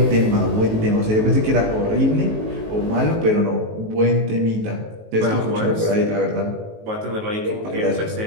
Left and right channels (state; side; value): late; left; 19 ms